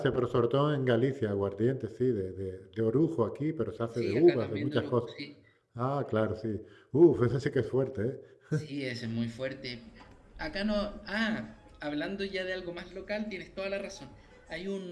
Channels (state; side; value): identical; both; correlation 1.00